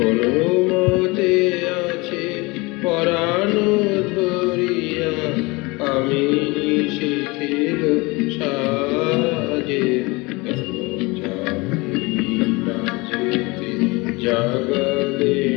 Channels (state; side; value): quieter; right; 24.9 dB